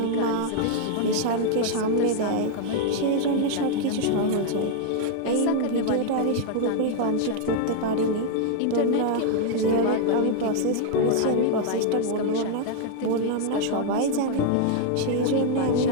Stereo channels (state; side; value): different; both; correlation -0.01